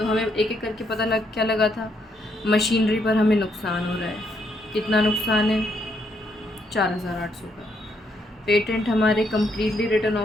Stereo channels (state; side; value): normal; both; correlation 0.75